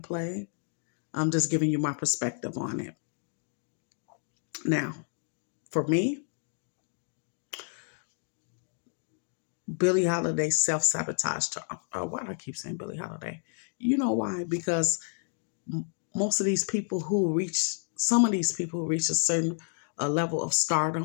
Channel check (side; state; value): right; silent; 55 dB below the other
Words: play. I'm just giving you my perspective on it. Now, for me, Billie Holiday self-sabotaged her. Why do I keep saying Billie Holiday? You know why? Because most of these people who reach, some of these people who reach a certain level of